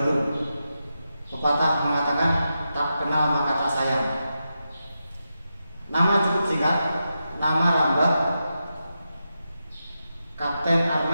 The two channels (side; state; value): both; inverted; correlation -0.88